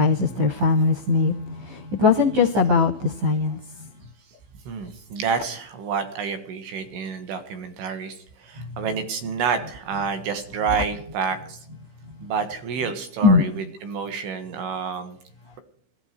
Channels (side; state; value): left; late; 15 ms